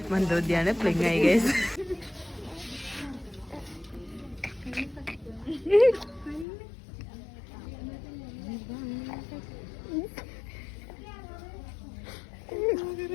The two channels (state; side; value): drops out; right; at 6.5 s